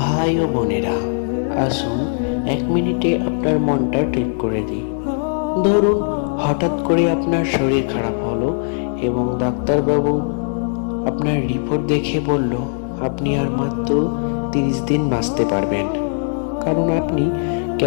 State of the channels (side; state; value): right; silent; digital silence